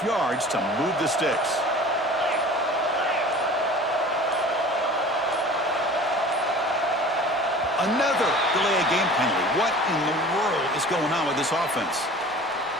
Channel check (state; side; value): normal; both; correlation 0.42